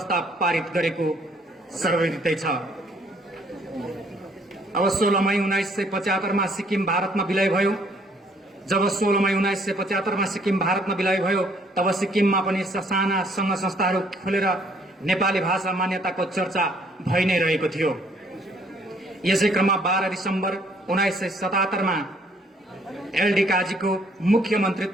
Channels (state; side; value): normal; both; correlation 0.63